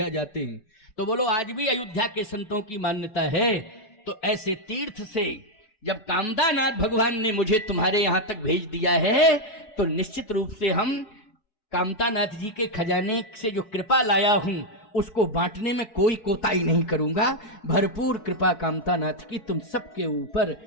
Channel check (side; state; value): right; late; 4.7 ms